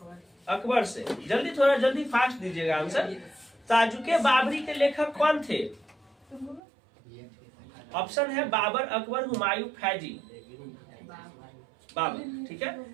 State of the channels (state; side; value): drops out; left; at 6.6 s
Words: अकबर से। जल्दी थोड़ा जल्दी फास्ट दीजिएगा आंसर। ताजुके बाबरी के लेखक कौन थे? ऑप्शन है बाबर, अकबर, हुमायूं, फैजी। बाबर, ठीक है।